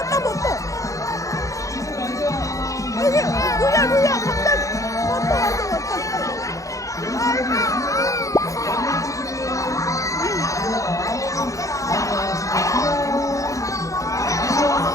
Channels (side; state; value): right; late; 0.16 ms